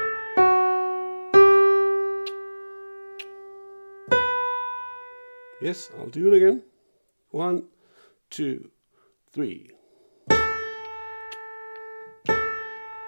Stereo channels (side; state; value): both; inverted; correlation -1.00